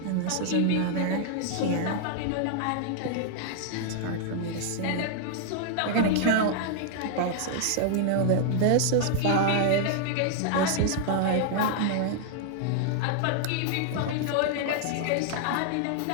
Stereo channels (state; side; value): different; both; correlation -0.01